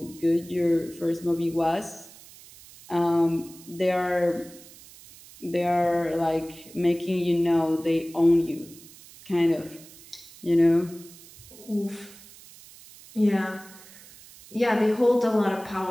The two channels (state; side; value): noise; right; hiss, 21 dB below the sound